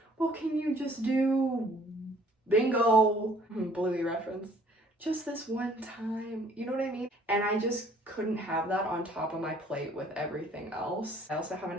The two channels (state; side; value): normal; both; correlation 0.58